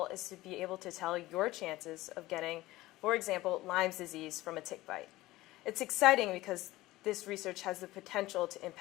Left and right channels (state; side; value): quieter; right; 17.9 dB